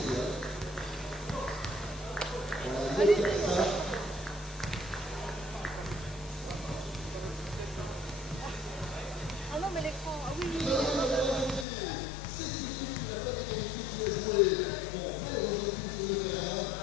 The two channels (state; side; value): drops out; right; at 11.7 s